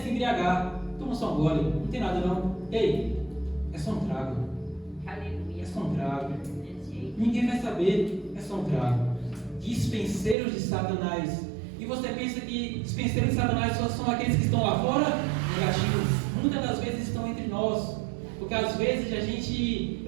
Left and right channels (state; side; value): drops out; left; at 10.4 s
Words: embriagar. Toma só um gole, não tem nada não. Ei, é só um trago. Aleluia. É só um trago. Ninguém vai saber. É só um trago. Dispenseiros de Satanás. E você pensa que dispenseiros de Satanás só são aqueles que estão lá fora? Negativos. Muitas das vezes estão entre nós. Porque às vezes